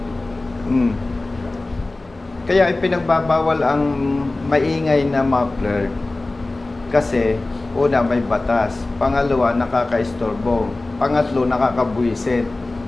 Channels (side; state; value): right; quieter; 3.0 dB